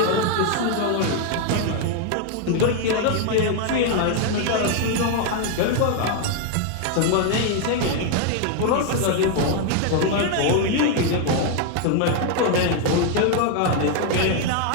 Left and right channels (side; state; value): both; different; correlation 0.00